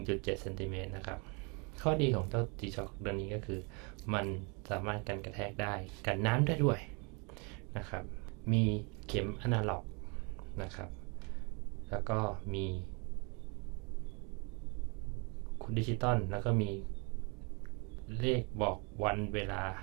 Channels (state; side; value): quieter; left; 32.6 dB